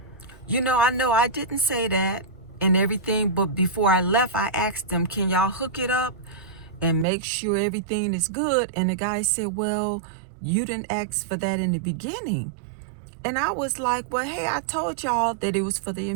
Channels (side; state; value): left; drops out; at 7.1 s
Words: I know I didn't say that and everything. But before I left, I asked them, can y'all hook it up and make sure everything is good? And the guy said, well, you didn't ask for that in the beginning. And I was like, well, hey, I told y'all that it was for the